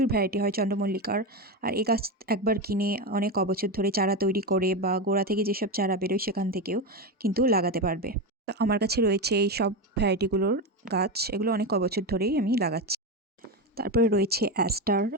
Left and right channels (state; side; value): normal; both; correlation 0.16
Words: ভ্যারাইটি হয় চন্দ্রমল্লিকার। আর এই গাছ একবার কিনে অনেক অবছর ধরে চারা তৈরি করে বা গোড়া থেকে যেসব চারা বেরোয় সেখান থেকেও কিন্তু লাগাতে পারবে। তো আমার কাছে রয়েছে এই সব ভ্যারাইটিগুলোর গাছ, এগুলো অনেক অবছর ধরেই আমি লাগাচ্ছি। তারপরে রয়েছে অ্যাস্টার,